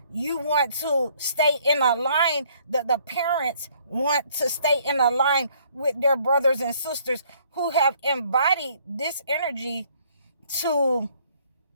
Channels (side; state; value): both; inverted; correlation -0.62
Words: you want to stay in a line, that the parents want to stay in a line with their brothers and sisters who have embodied this energy to